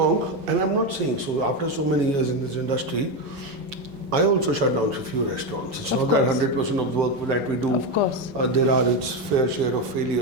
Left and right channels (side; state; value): left; late; 5.4 ms